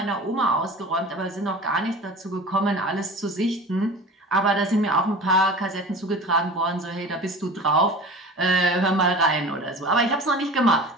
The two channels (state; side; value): normal; both; correlation 0.37